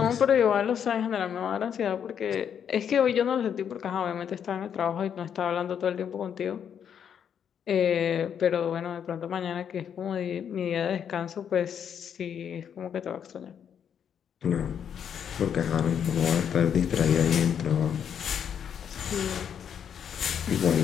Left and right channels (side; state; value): right; quieter; 8.3 dB